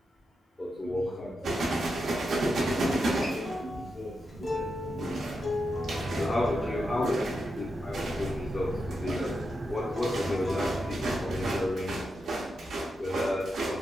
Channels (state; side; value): normal; both; correlation 0.87